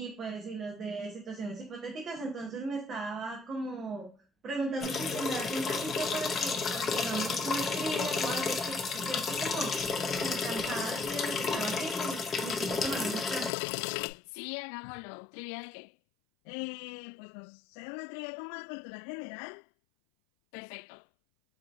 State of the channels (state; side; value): drops out; right; at 13.5 s